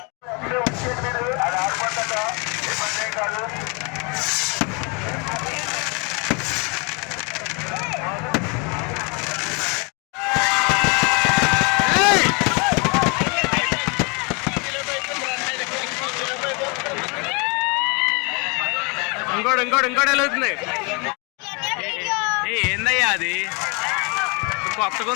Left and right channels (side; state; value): right; quieter; 32.0 dB